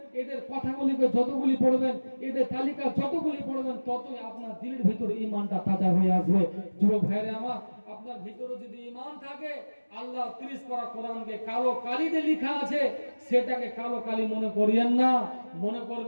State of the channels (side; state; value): both; inverted; correlation -1.00